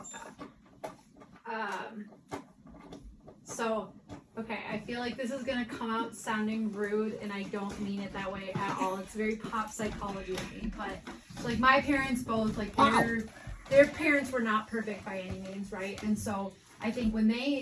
that? So, okay, I feel like this is gonna come out sounding rude, and I don't mean it that way at all. It's very pop psychology of me, but so, like my parents both, like their parents were not perfect by any means, right? And so I think when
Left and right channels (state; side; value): identical; both; correlation 1.00